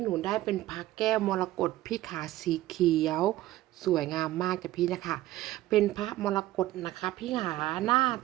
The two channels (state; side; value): quieter; left; 15.6 dB